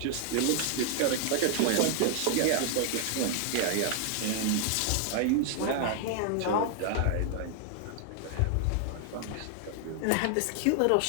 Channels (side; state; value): both; different; correlation 0.00